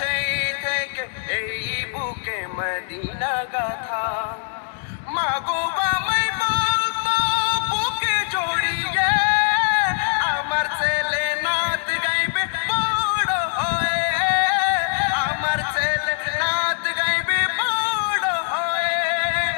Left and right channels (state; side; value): silent; right; digital silence